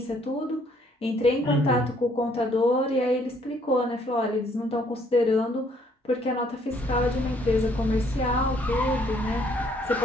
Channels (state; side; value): normal; both; correlation 0.65